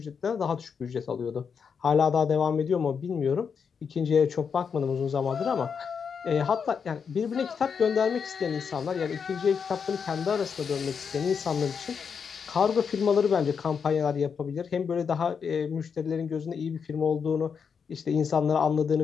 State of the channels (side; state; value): right; quieter; 6.4 dB